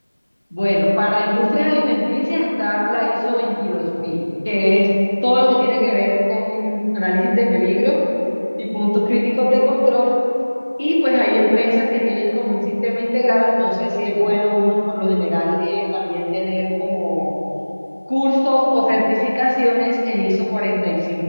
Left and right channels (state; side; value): inverted; both; correlation -1.00